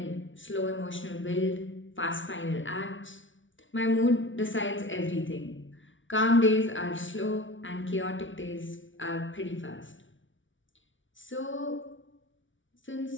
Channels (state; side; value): late; right; 0.56 ms